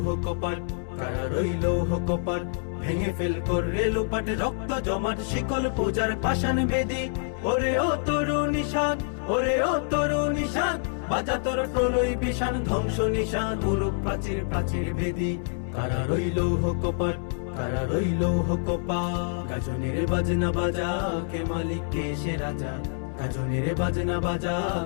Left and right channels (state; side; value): silent; right; digital silence